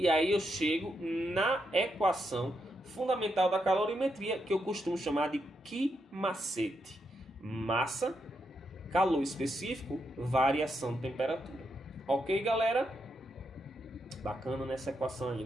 aí eu chego na equação fundamental da calorimetria, que eu costumo chamar de que macete. Massa, calor específico, variação de temperatura. Ok, galera? Bacana nessa equação aí,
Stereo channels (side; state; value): both; normal; correlation 0.81